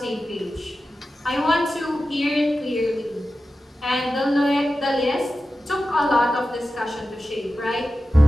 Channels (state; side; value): normal; both; correlation 0.93